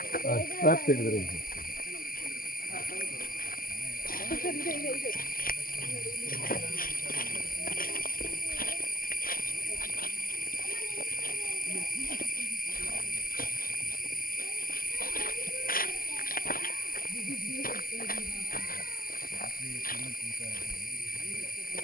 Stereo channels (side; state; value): right; late; 0.42 ms